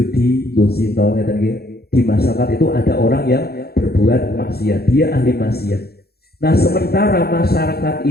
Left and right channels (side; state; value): right; late; 0.46 ms